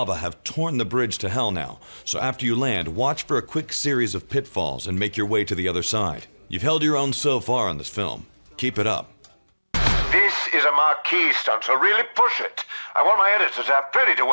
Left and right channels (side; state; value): both; inverted; correlation -1.00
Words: have torn the bridge to hell now, so after you land, watch for a quick series of pitfalls and make your way to the other side. You've held your own so far on this film. Keep it up. This is a marquee stunt, so really push it. I want my editors to have plenty to